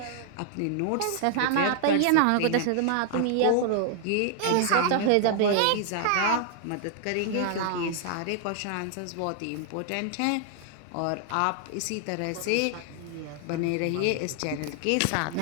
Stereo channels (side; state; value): both; different; correlation 0.00